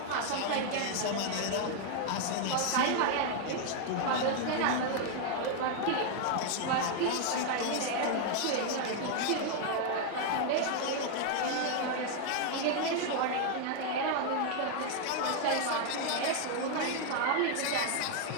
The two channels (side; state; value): both; different; correlation 0.00